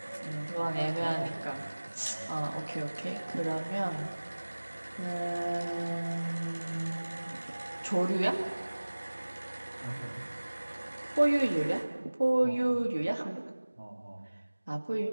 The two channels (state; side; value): inverted; both; correlation -1.00